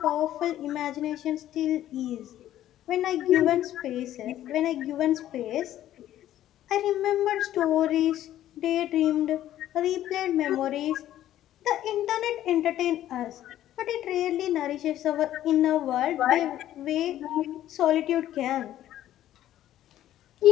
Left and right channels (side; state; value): right; quieter; 12.7 dB